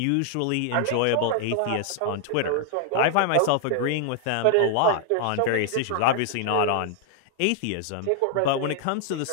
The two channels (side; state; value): both; different; correlation 0.00